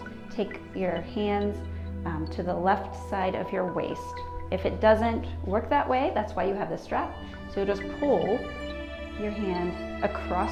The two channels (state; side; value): identical; both; correlation 1.00